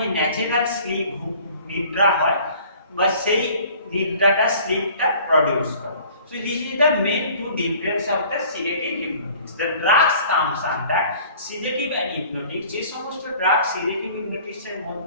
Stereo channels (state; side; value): inverted; both; correlation -0.50